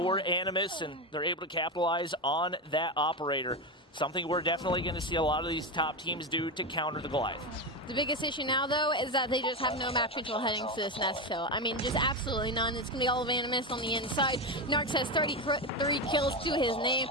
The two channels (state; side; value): normal; both; correlation 0.14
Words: Animus, and they're able to capitalize on that operator. Something we're definitely going to see a lot of these top teams do to counter the Goliath. The biggest issue now, though, is that they just have no map control heading to this nest hill. I mean, just absolutely none. It's going to be all of Animus on the inside. Narcs has 33 kills to his name.